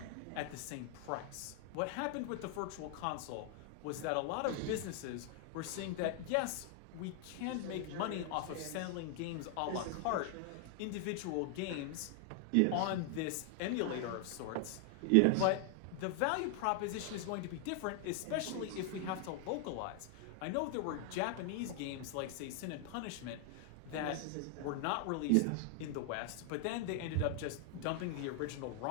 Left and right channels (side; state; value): both; different; correlation 0.00